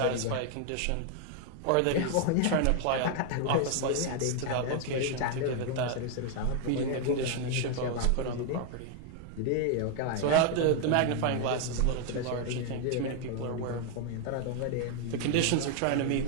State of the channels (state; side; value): different; both; correlation 0.00